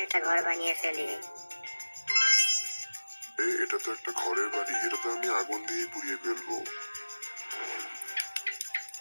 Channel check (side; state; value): both; inverted; correlation -1.00